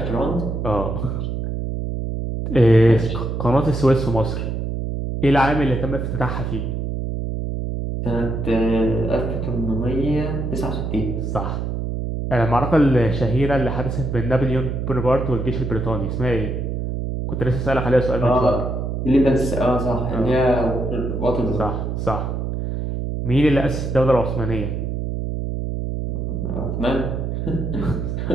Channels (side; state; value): right; noise; hum, 3 dB below the sound